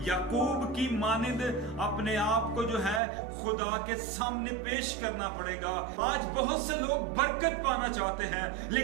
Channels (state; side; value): drops out; left; at 3.0 s